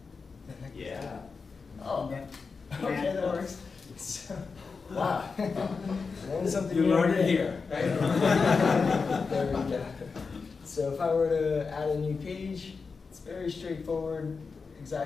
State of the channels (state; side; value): quieter; right; 4.8 dB